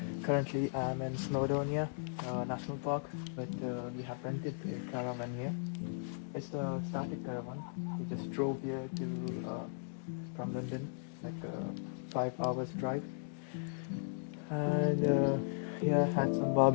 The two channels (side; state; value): right; silent; digital silence